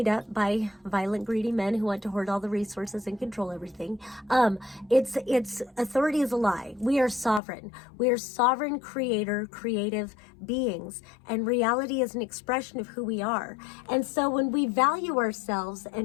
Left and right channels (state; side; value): drops out; right; at 7.4 s